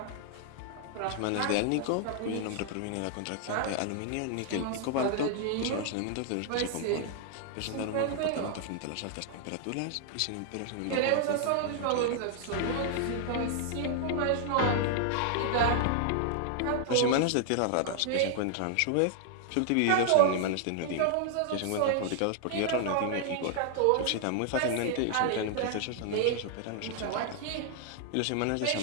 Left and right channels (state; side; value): different; both; correlation 0.00